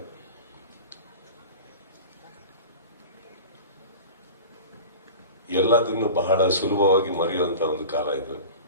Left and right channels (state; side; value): inverted; both; correlation -0.35